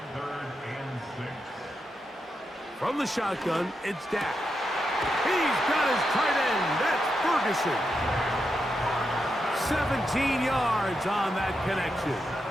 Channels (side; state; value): both; normal; correlation 0.85